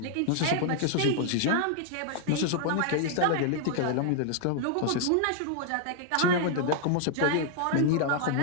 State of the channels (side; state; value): both; different; correlation 0.00